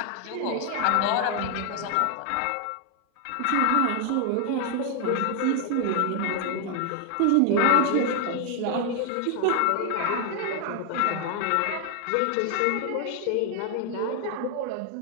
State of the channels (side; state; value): both; different; correlation 0.00